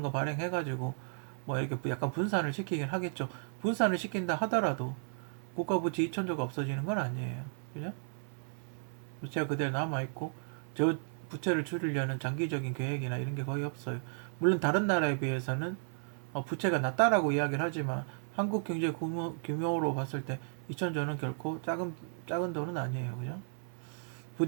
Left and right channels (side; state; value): left; silent; 55 dB below the other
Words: 거 발행해가지고 뭐 이렇게 약간 분산을 시키긴 하겠죠. 분산을 시킨다 하더라도 국가 부채 2천조가 없어지는 건 아니에요. 그죠? 부채가 그대로 남아있고, 저 부채를 줄이려는 장기적인 계획이나 이런 게 거의 없어요. 물론 다른 나라에 비해서는 부채가 낮다라고 이야기를 하지만 한국 경제 규모로 봤을 때 2천조는 결코 작은 돈은 아니에요. 그죠?